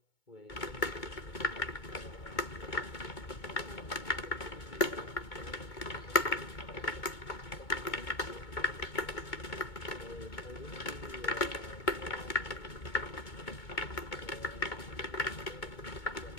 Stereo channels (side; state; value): right; late; 2.2 ms